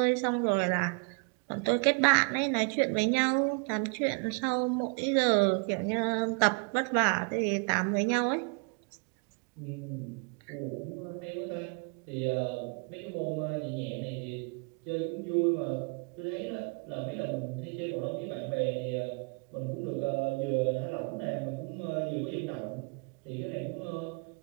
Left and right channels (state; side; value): quieter; left; 36.0 dB